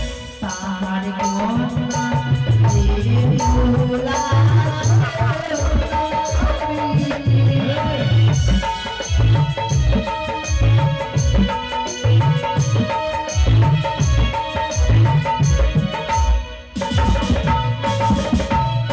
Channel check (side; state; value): both; identical; correlation 1.00